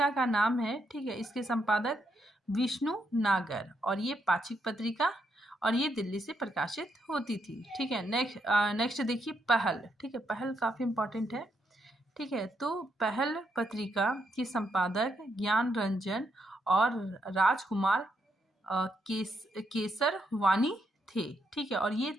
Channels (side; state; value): both; normal; correlation 0.78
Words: का नाम है। ठीक है, इसके संपादक विष्णु नागर, और ये पाक्षिक पत्रिका और ये दिल्ली से प्रकाशित होती थी। ठीक है, नेक्स्ट देखिए पहल। ठीक है, पहल काफी इंपॉर्टेंट है। ठीक है, तो पहल पत्रिका के संपादक ज्ञान रंजन और राजकुमार केसर वानी थे। ठीक है, और ये